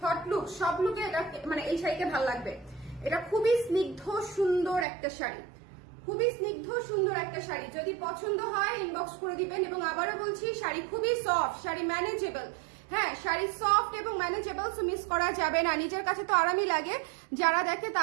হট লুক, সব লুকে এটা মানে এই শাড়িকে ভালো লাগবে। এটা খুবই স্নিগ্ধ সুন্দর একটা শাড়ি, খুবই স্নিগ্ধ সুন্দর একটা শাড়ি। যদি পছন্দ হয় ইনবক্স করে দিবেন। এবং আবারও বলছি শাড়ি খুবই সফট, শাড়ি ম্যানেজেবল। হ্যাঁ, শাড়ি সফট এবং ম্যানেজেবল, সো মিস করা যাবে না। নিজের কাছে তো আরামই লাগে, যারা দেখে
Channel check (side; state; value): left; drops out; at 4.9 s